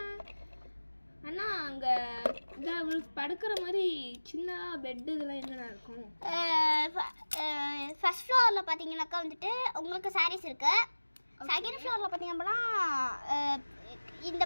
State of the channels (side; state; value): both; inverted; correlation -1.00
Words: அண்ணா அங்கே படுக்கிற மாதிரி சின்ன பெட்டு இதெல்லாம் என்னென்ன இருக்கும்? ஃபர்ஸ்ட் ஃப்ளோரில் பார்த்தீங்கன்னாக்கா வந்துட்டு உங்களுக்கு சாரீஸ் இருக்கு. செகண்ட் ஃப்ளோரில் பார்த்தீங்க அப்படின்னா இந்த